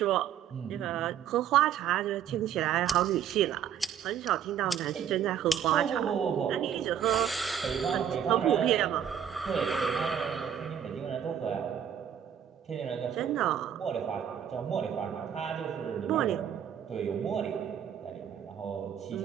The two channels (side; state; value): left; quieter; 9.1 dB